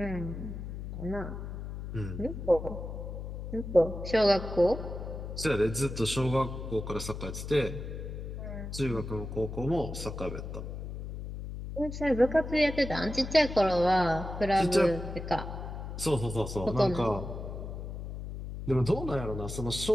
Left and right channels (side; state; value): left; noise; hum, 7 dB below the sound